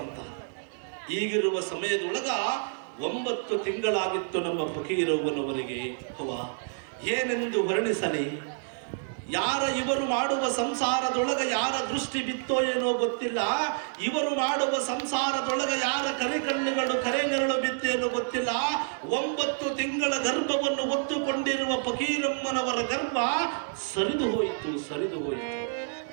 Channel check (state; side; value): silent; left; digital silence